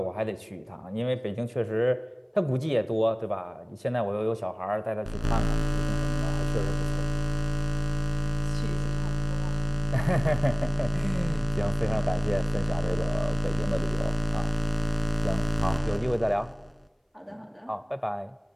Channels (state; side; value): identical; both; correlation 1.00